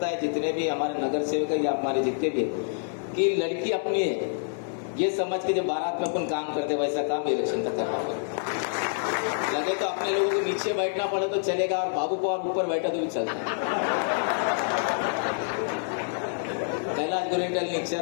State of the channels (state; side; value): silent; right; 60 dB below the other